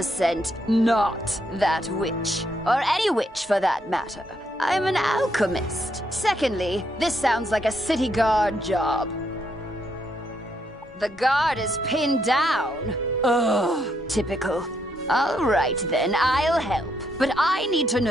not that witch. Or any witch for that matter. I'm an alchemist. Secondly, this sounds like a city guard job. The guard is pinned down. Ugh, typical. All right then, I'll help. But I need to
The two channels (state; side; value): normal; both; correlation 0.76